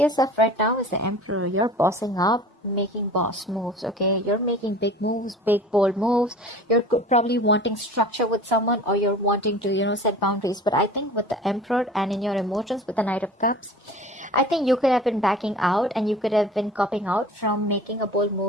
yourself right now is the Emperor. You're bossing up, making boss moves, okay? You're making big moves, big bold moves. You're probably wanting structure with someone, or you're wanting to, set boundaries. But I think with the Emperor and in your emotions with the Knight of Cups, I think you could have been backing out, and you could have been copping out from making a bold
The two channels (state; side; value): normal; both; correlation 0.41